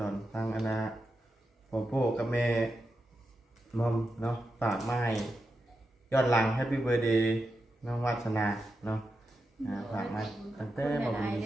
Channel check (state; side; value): normal; both; correlation 0.88